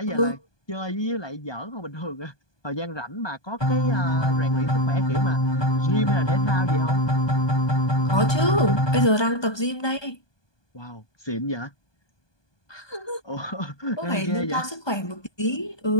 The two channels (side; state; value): right; late; 1.2 ms